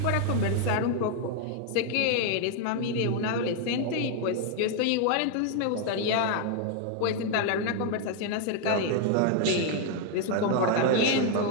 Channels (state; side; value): different; both; correlation 0.00